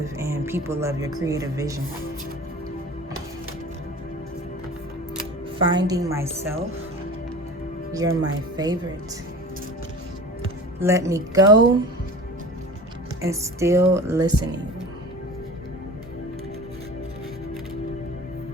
and people love your creative vision. Finding myself. You're my favorite. Let me go, and still listening.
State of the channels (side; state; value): both; normal; correlation 0.39